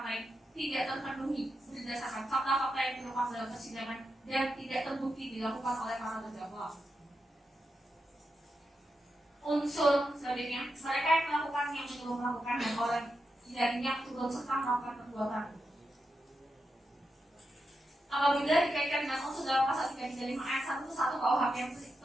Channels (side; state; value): both; normal; correlation 0.87